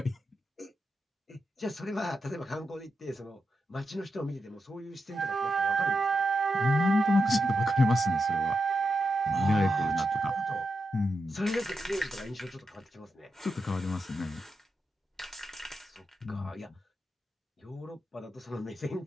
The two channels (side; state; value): both; normal; correlation 0.86